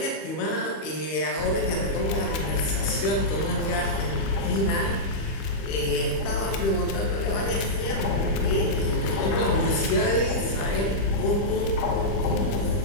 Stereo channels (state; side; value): late; right; 25 ms